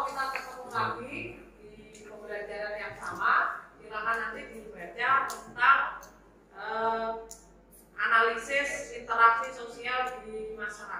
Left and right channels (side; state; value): both; identical; correlation 1.00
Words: kita ketemu lagi di pembelajaran yang sama. Silakan nanti dibaca tentang analisis interaksi sosial di